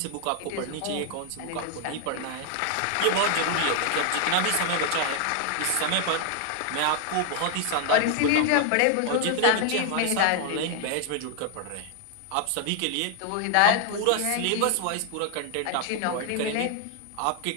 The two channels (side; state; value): both; different; correlation 0.00